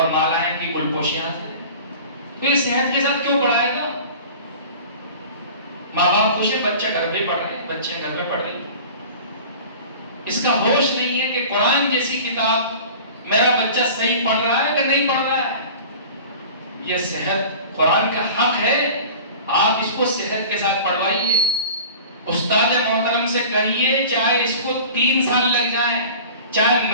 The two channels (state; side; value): inverted; both; correlation -0.40